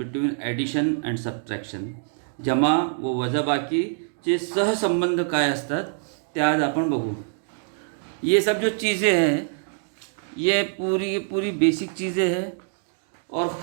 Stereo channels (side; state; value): left; silent; digital silence